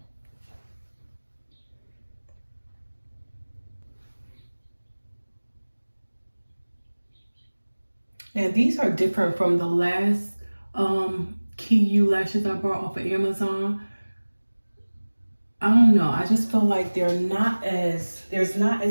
Now these are different from the last KeyU lashes I bought off of Amazon. I don't know, I just feel like there's not as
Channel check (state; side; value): inverted; both; correlation -1.00